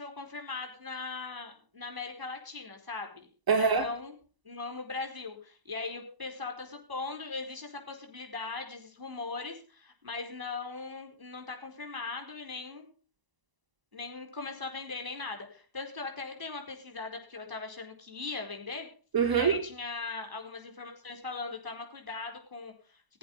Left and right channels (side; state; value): left; late; 1.0 ms